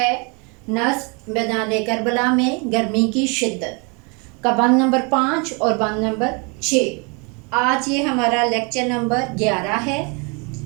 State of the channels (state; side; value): quieter; left; 32.5 dB